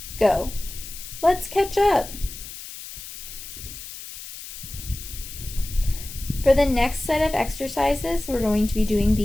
go. Let's catch up. For the next set of exercises, we're going to be doing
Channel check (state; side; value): noise; left; hiss, 12 dB below the sound